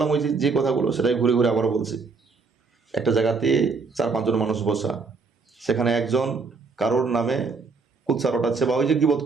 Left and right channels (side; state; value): left; quieter; 4.5 dB